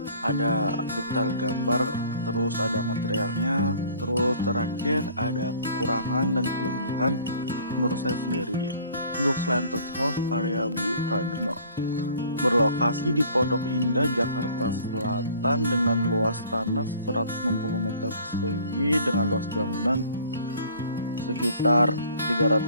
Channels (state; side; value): inverted; both; correlation -0.53